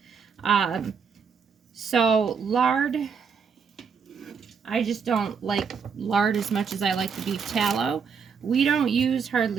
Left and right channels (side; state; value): left; quieter; 6.2 dB